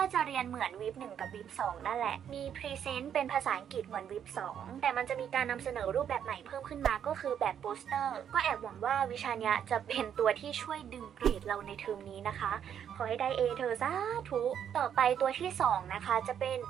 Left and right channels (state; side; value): quieter; left; 8.9 dB